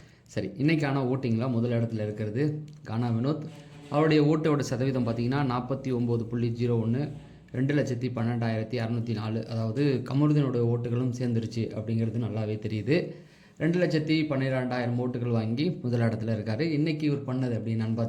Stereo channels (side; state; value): both; identical; correlation 1.00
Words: சரி, இன்றைக்கான ஓட்டிங்கில் முதல் இடத்துல இருக்கிறது கானா வினோத். அவருடைய ஓட்டோட சதவீதம் பார்த்திங்கன்னா 49.01, 2,12,604. அதாவது கமருதீனோட ஓட்டுகளும் சேர்ந்துருச்சு அப்படிங்கிறது நல்லாவே தெரியுது. 2,12,000 ஓட்டுகள் வாங்கி முதல் இடத்துல இருக்கார். இன்றைக்கி இவர் பண்ணது அப்படின்னான்னு